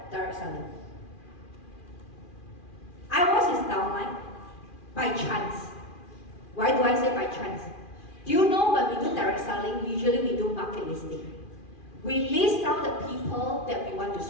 direct selling. I was his downline by chance. Why do I say by chance? Do you know when we do direct selling, usually we do market listing. We list down the people that we want to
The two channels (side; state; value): right; late; 2.4 ms